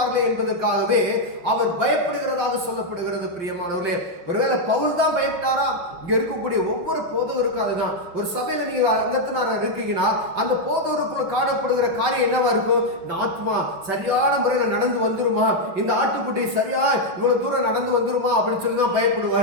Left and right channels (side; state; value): left; late; 5.8 ms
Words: என்பதற்காகவே அவர் பயப்படுகிறதாக சொல்லப்படுகிறது. பிரியமானவர்களே, ஒருவேளை பவுல் தான் பயப்பட்டாரா? இங்க இருக்கக்கூடிய ஒவ்வொரு போதவருக்கும் அதுதான். ஒரு சபையில நீங்க அங்கத்தினார இருக்கீங்கன்னா அந்த போதவருக்குள்ள காணப்படுகிற காரியம் என்னவா இருக்கும், இந்த ஆத்மா சரியான முறையில் நடந்து வந்துருமா, இந்த ஆட்டுக்குட்டி சரியா இவ்வளவு தூரம் நடந்து வந்துருமா அப்படின்னு சொல்லி தான்